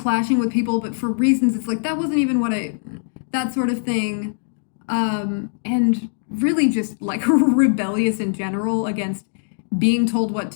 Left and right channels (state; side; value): silent; right; digital silence